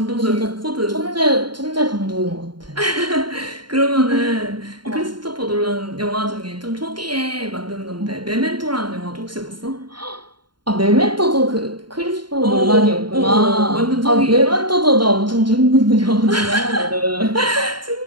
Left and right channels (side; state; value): left; late; 0.72 ms